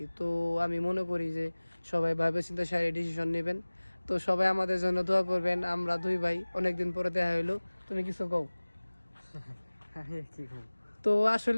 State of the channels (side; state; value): both; inverted; correlation -1.00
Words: তো আমি মনে করি যে সবাই ভাবে চিন্তা সারি ডিসিশন নেবেন। তো সবাই আমাদের জন্য দোয়া করবেন। আমরা দুই ভাই অনেকদিন পরে দেখা হইলো। তুমি কিছু কও? তো